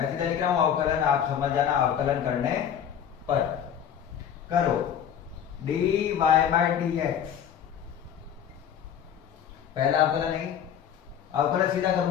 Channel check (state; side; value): quieter; right; 9.0 dB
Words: सीधा लिख रहा हूं अवकलन, आप समझ जाना, अवकलन करने पर करो dy बाई dx। पहला अवकलन है, अवकलन सीधा